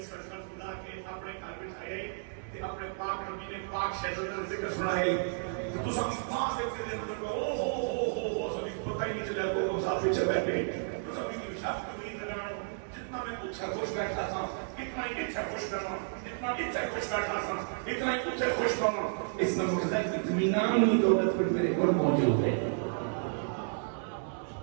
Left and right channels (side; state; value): left; silent; digital silence